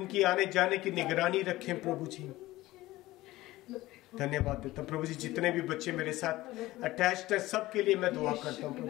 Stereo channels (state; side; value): quieter; right; 17.6 dB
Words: आने जाने की निगरानी रखें प्रभु जी. धन्यवाद देता हूँ प्रभु जी. जितने भी बच्चे मेरे साथ अटैच्ड है सबके लिए मैं दुआ करता हूँ